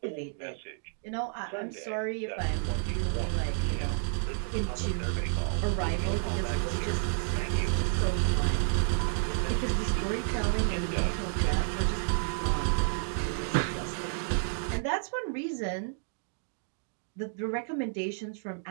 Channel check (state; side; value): silent; left; digital silence